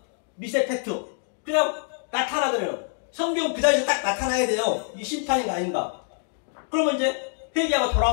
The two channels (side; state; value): right; silent; 60 dB below the other